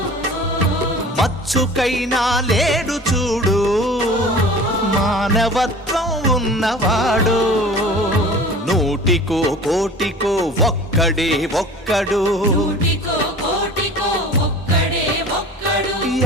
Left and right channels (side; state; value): both; normal; correlation 0.41